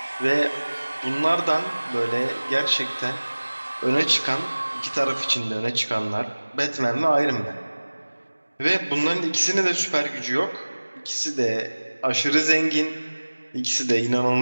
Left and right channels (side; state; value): both; inverted; correlation -1.00